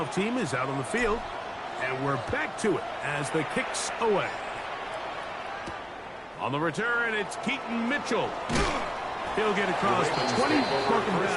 team is out on the field, and we're back to it as the kick's away. On the return, it's Keaton Mitchell. He'll get across the 20, marking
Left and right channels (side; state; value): both; identical; correlation 1.00